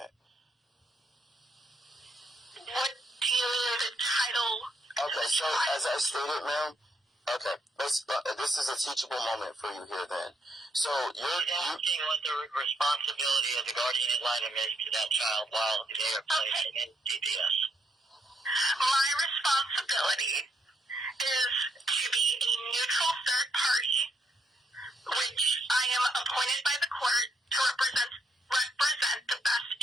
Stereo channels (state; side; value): normal; both; correlation 0.75